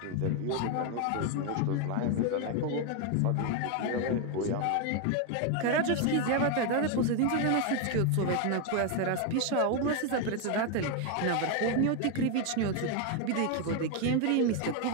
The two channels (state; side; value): different; both; correlation 0.01